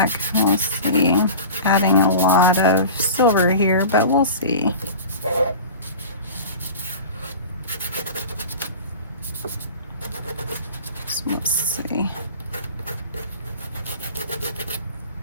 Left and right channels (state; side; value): inverted; both; correlation -0.36